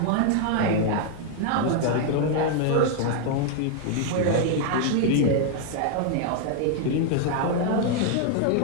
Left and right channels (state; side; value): different; both; correlation 0.00